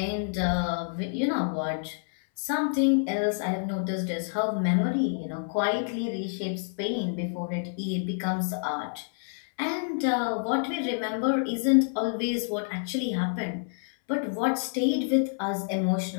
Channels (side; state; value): right; silent; 59 dB below the other